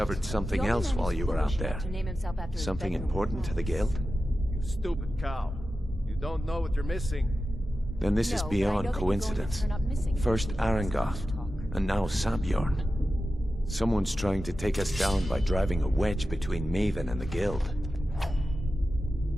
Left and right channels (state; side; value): normal; both; correlation 0.93